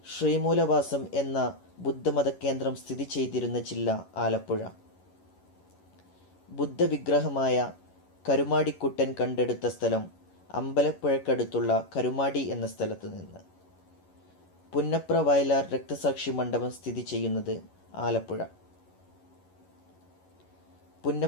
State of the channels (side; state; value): right; late; 11 ms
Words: ശ്രീമൂലവാസം എന്ന ബുദ്ധമത കേന്ദ്രം സ്ഥിതി ചെയ്തിരുന്ന ജില്ല ആലപ്പുഴ. ബുദ്ധവിഗ്രഹമായ കരുമാടിക്കുട്ടൻ കണ്ടെടുത്ത സ്ഥലം അമ്പലപ്പുഴക്കടുത്തുള്ള കരുമാടി എന്ന സ്ഥലത്ത് നിന്ന്. പുന്നപ്ര വയലാർ രക്തസാക്ഷി മണ്ഡപം സ്ഥിതി ചെയ്യുന്നത് ആലപ്പുഴ.